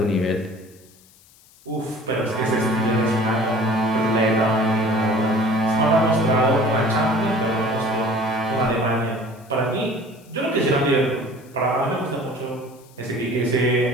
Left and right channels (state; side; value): noise; left; hiss, 28 dB below the sound